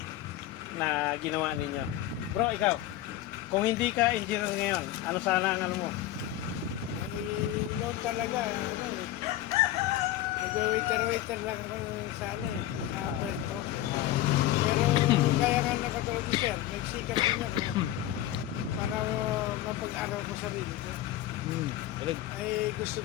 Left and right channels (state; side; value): quieter; right; 13.7 dB